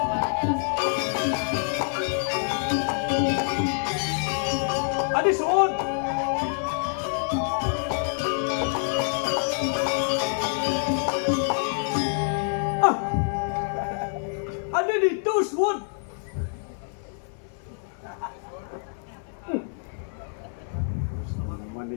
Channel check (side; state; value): right; silent; 57 dB below the other